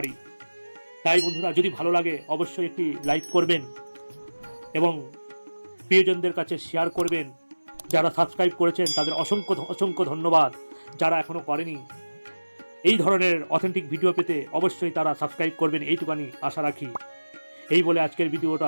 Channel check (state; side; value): inverted; both; correlation -1.00